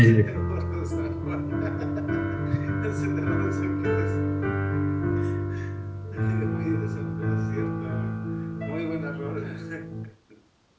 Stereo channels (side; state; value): both; identical; correlation 1.00